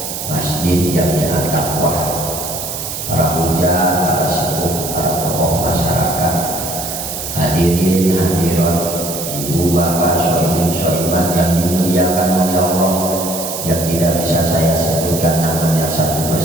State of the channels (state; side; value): noise; right; hiss, 6 dB below the sound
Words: Masjid Jami'at Taqwa, para hujah, para sepuh, para tokoh masyarakat, hadirin hadirat, ibu bapak, sohibin sohibat yang dimuliakan oleh Allah, yang tidak bisa saya sebutkan namanya satu